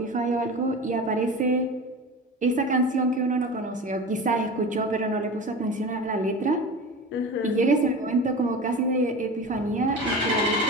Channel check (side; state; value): both; normal; correlation 0.32